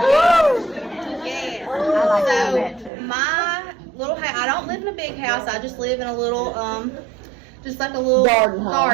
Yeah. So my little house, I don't live in a big house. I just live in a little, just like a little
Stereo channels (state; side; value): drops out; left; at 2.9 s